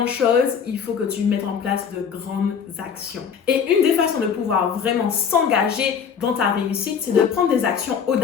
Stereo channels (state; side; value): quieter; right; 7.0 dB